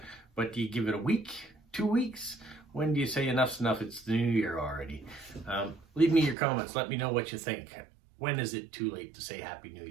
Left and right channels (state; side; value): drops out; left; at 6.4 s